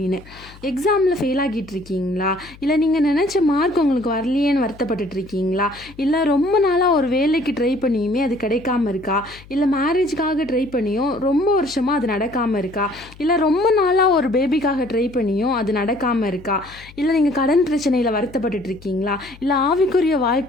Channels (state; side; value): noise; left; hum, 21 dB below the sound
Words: எக்ஸாமில் ஃபெயில் ஆகிட்டு இருக்கீங்களா? இல்லை நீங்கள் நினச்ச மார்க் உங்களுக்கு வரலையேன்னு வருத்தப்பட்டுட்டு இருக்கீங்களா? இல்லை ரொம்ப நாளாக ஒரு வேலைக்கு ட்ரை பண்ணியுமே அது கிடைக்காம இருக்கா? இல்லை மேரேஜுக்காக ட்ரை பண்ணியும் ரொம்ப வருஷமாக அது நடக்காமல் இருக்கா? இல்லை ரொம்ப நாளாக ஒரு பேபிக்காக ட்ரை பண்ணியும் அது நடக்காமல் இருக்கா? இல்லை நீங்கள் கடன் பிரச்சனையில் வருத்தப்பட்டுட்டு இருக்கீங்களா? இல்லை ஆவிக்குரிய